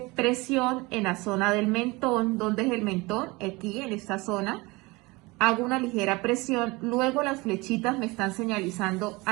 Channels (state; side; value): quieter; left; 23.7 dB